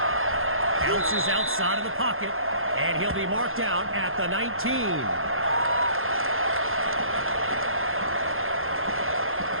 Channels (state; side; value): late; left; 0.60 ms